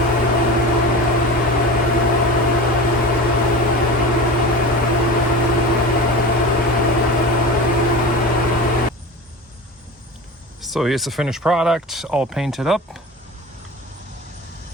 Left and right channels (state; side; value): normal; both; correlation 0.31